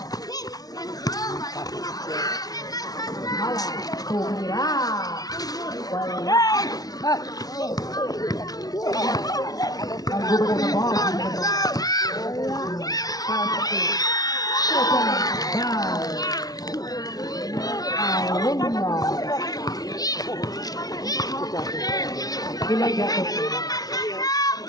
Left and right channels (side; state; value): right; late; 0.18 ms